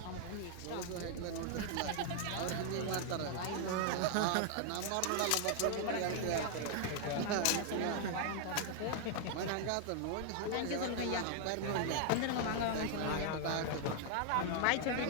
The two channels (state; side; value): different; both; correlation 0.00